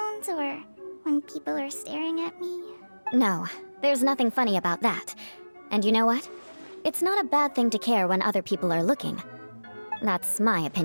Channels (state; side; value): inverted; both; correlation -1.00